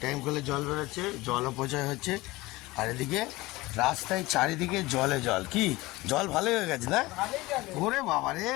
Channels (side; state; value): right; quieter; 20.4 dB